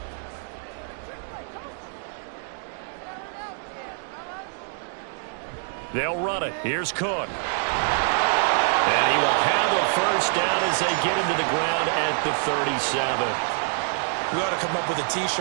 They'll run it. Here's Cook. And he will have a first down as they get him to the ground at the 37. We ought to come up with a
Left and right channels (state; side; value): silent; left; 61 dB below the other